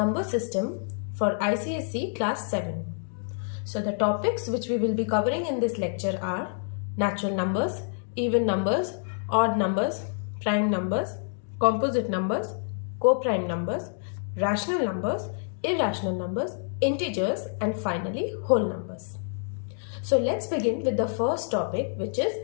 System for ICSE Class 7. So the topics which we will be covering in this lecture are natural numbers, even numbers, odd numbers, prime numbers, composite numbers, co-prime numbers, rational numbers, irrational numbers, integers, and finally whole numbers. So let's begin with the first topic, which is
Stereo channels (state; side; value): silent; right; digital silence